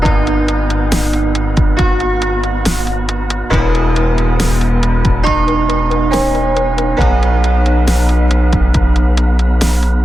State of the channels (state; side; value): normal; both; correlation 0.92